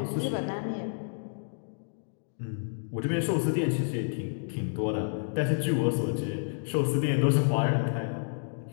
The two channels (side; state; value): right; silent; digital silence